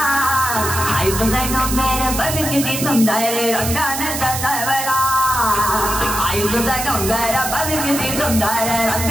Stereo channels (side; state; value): right; noise; hiss, 4 dB below the sound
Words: आई तुझा डोंगर बघितली सुंदर रंगाने सजावला आई तुझा डोंगर बघितली सुंदर